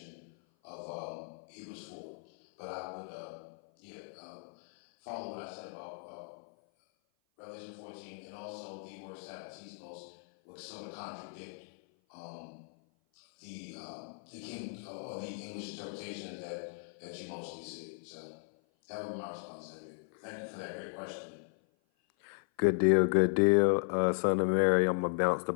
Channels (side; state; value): right; silent; 54 dB below the other